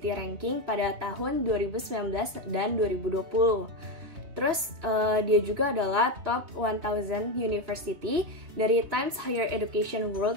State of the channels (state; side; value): late; left; 3.2 ms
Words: Ranking pada tahun 2019 dan 2020. Terus dia juga adalah top 1000 University dari Times Higher Education